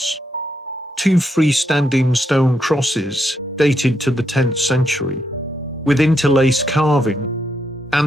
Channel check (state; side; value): normal; both; correlation 0.79